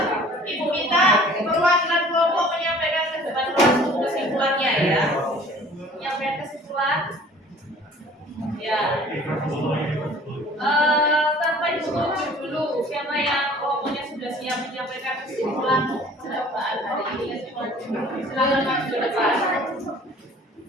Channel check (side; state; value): both; normal; correlation 0.49